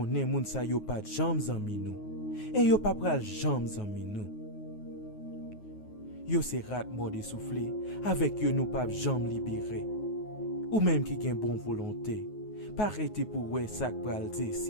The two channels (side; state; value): right; late; 9.4 ms